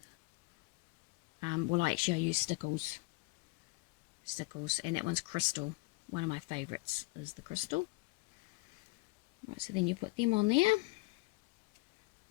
Well, actually I use stickles, and that one's crystal. One of my favourites is the crystal. Right, so then you put them on there.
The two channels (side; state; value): right; quieter; 24.1 dB